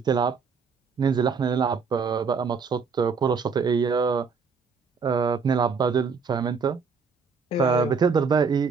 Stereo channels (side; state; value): left; quieter; 5.4 dB